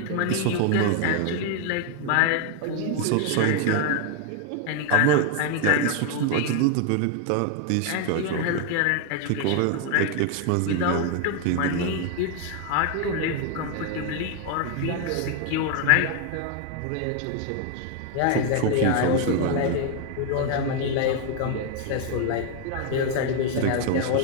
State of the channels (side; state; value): both; different; correlation 0.01